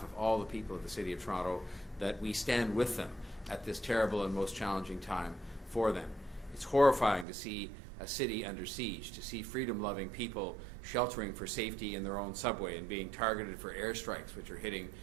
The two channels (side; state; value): left; drops out; at 7.2 s